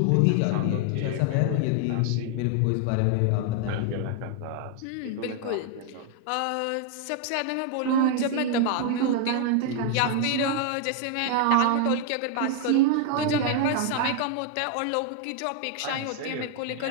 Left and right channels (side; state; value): both; different; correlation 0.00